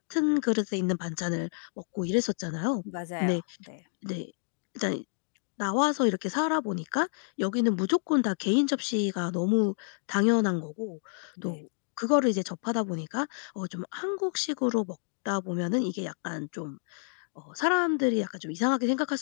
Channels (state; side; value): silent; right; digital silence